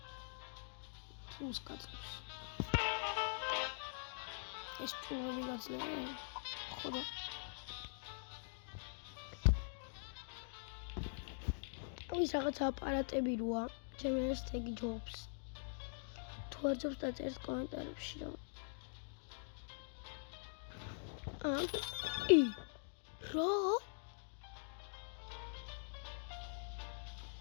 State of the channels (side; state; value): right; silent; digital silence